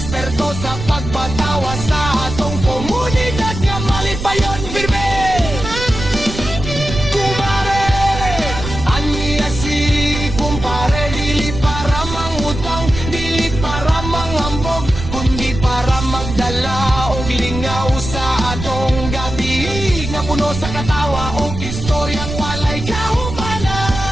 sa pagpatawa sa atong komunidad nga malipayon firme. Kumpare, aniya si kumpare, dili para mangutang, dili para manghambog, kundi para magdala og lingaw sa atong gabi nga puno sa katawa o istoryang walay kahumanan.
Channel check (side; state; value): right; noise; rumble, 7 dB below the sound